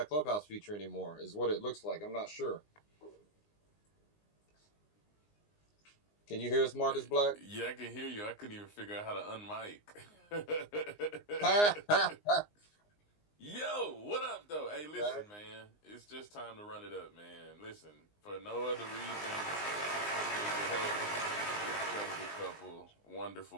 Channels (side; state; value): right; late; 19 ms